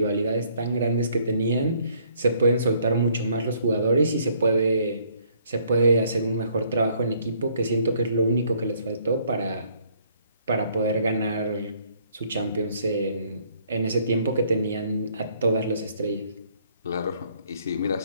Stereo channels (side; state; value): both; inverted; correlation -0.64